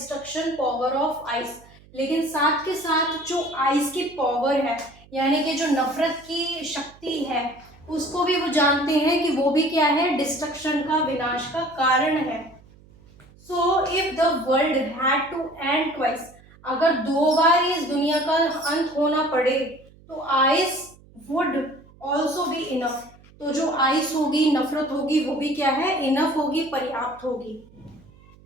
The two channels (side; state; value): right; noise; hum, 25 dB below the sound